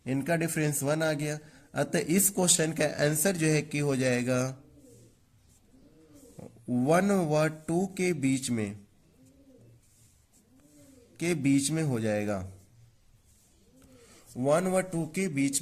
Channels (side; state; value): both; identical; correlation 1.00